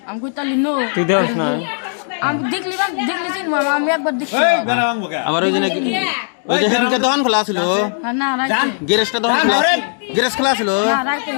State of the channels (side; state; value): right; silent; digital silence